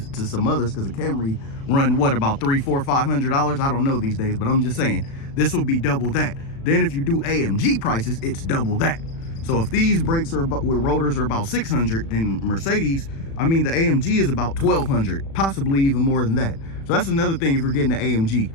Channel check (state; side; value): late; right; 36 ms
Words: some others, because a Camry run what, about $300, $400, $500? I don't know these days, but I'm just saying this will be double that. Then if you do AMG prices, it's double that. So if these brakes are about, with rotors are about 600, then Mercedes, I mean the AMG is about 1200, possibly even more than that. So that's another thing. If you're getting the